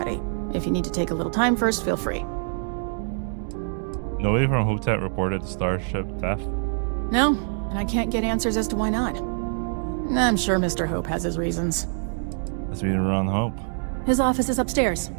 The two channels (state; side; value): silent; left; 62 dB below the other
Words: If you need to take a little time first, feel free. Nobody from Hotet reported the starship theft? No, and I can't get answers as to why not. I'm sure Mr. Hope has his reasons. Let's meet Ron Hope. His office is upstairs.